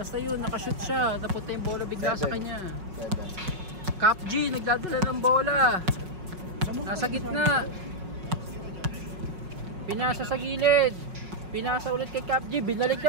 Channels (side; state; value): left; late; 5.4 ms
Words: yun, nakashoot siya. Napunta yung bola bigla sa kanya. Cap G, nagdadala ng bola. Nasa gitna. Pinasa sa gilid. Pinasa ulit kay Cap G. Binalik